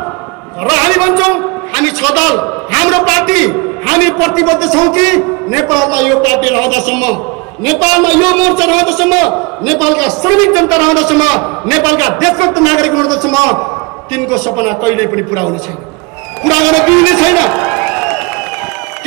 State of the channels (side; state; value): left; quieter; 28.5 dB